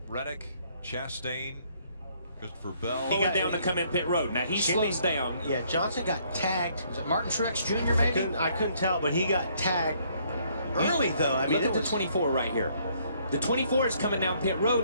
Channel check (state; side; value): inverted; both; correlation -0.66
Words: Reddick, Chastain, Christopher Bell. He got down to come in pit road. Now he slows down. Yeah, Johnson got tagged. Was it Martin Truex Jr. maybe? I couldn't tell, but he got tagged early though. I mean, look at the 24 right here. The 24 is coming down pit